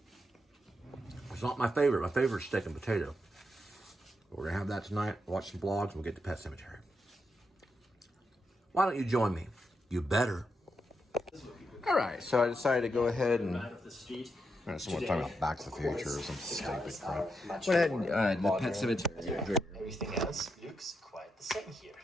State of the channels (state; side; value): normal; both; correlation 0.83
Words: It's not my favorite. My favorite is steak and potato. We're going to have that tonight, watch some vlogs, and we'll get to Pet Sematary. Why don't you join me? You better. All right, so I decided to go ahead and... someone talking about Back to the Future or some stupid crap. Went ahead and the Pet Sematary. Everything else looks quite the same here.